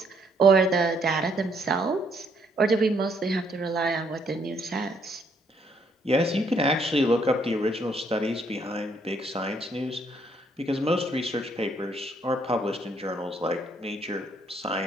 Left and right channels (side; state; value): both; normal; correlation 0.69